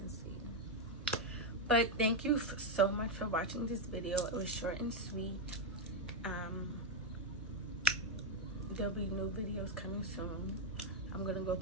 see. But thank you so much for watching this video. It was short and sweet. There'll be new videos coming soon. I'm gonna go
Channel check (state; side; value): normal; both; correlation 0.02